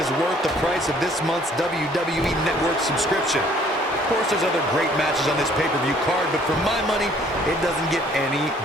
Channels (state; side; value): normal; both; correlation 0.59